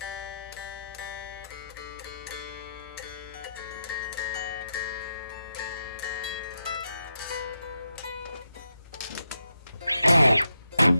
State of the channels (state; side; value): inverted; both; correlation -0.85